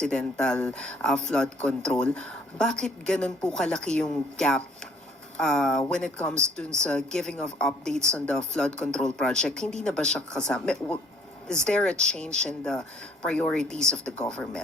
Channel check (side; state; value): both; normal; correlation 0.61